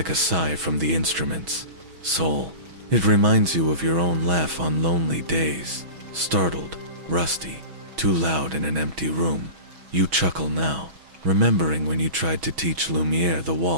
a sigh from the instruments. Soul. It reminds you of your own laugh on lonely days. Startled, rusty, too loud in an empty room. You chuckle now, remembering when you tried to teach Lumiere the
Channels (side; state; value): left; late; 6.2 ms